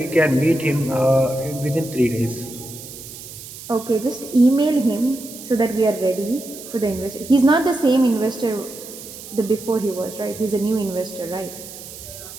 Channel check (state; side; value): noise; right; hiss, 14 dB below the sound